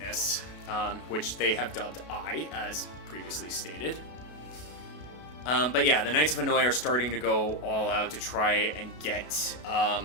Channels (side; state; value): right; late; 32 ms